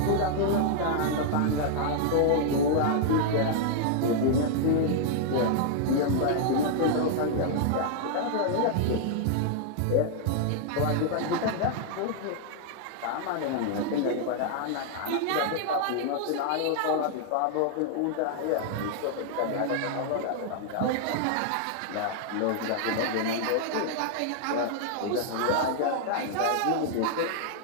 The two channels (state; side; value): different; both; correlation -0.01